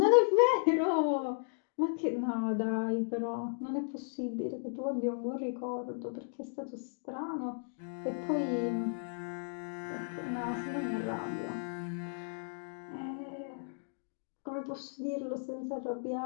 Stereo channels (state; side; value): silent; right; digital silence